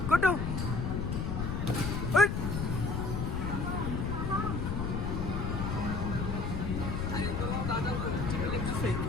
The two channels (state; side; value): noise; left; rumble, 1 dB below the sound